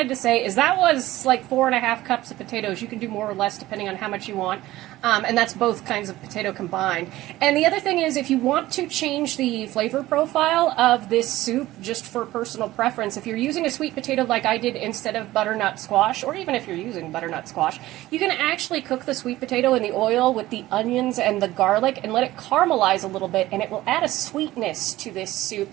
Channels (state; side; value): quieter; left; 16.4 dB